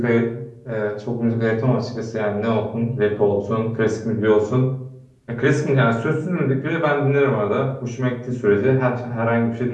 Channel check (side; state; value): both; identical; correlation 1.00